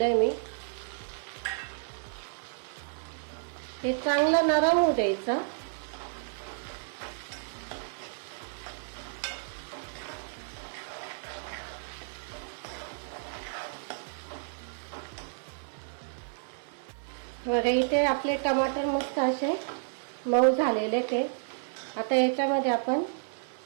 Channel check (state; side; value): silent; left; digital silence